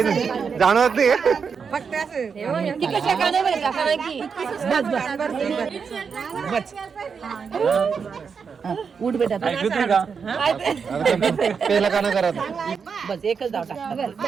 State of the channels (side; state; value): left; quieter; 6.0 dB